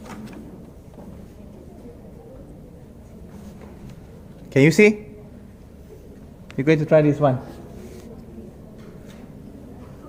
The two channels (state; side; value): identical; both; correlation 1.00